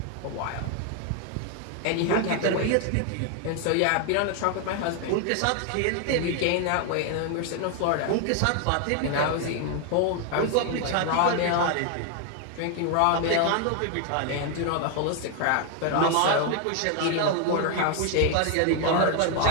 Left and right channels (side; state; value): both; different; correlation 0.01